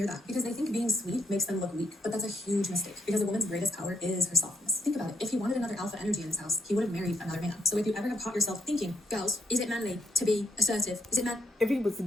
that because they think being sweet makes them look weak. But that's a huge mistake because a woman's greatest power is her softness. Think about it. If he wanted another alpha energy in his house, he would have married another man. So if you ever have caught yourself thinking, girls, is it manly to be assertive? Is it man? If he was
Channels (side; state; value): both; normal; correlation 0.72